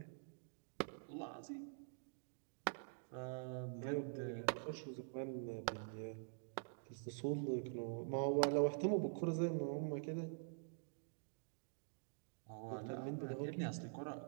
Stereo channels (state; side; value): silent; left; digital silence